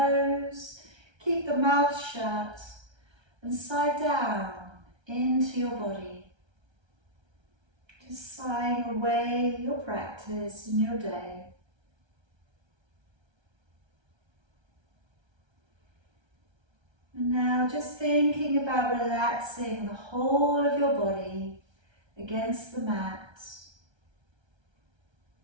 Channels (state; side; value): late; left; 1.3 ms